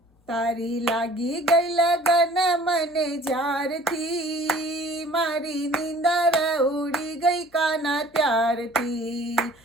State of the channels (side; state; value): both; normal; correlation 0.51